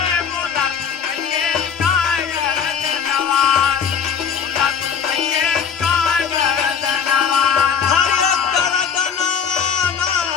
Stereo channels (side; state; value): right; quieter; 7.2 dB